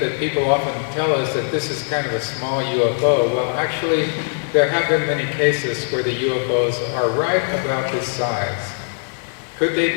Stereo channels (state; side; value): silent; right; 63 dB below the other